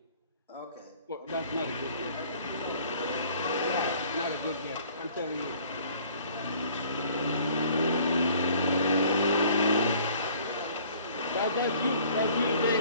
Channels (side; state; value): both; inverted; correlation -0.54